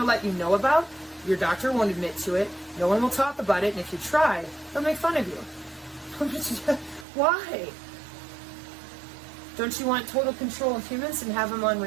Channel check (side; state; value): left; drops out; at 7.1 s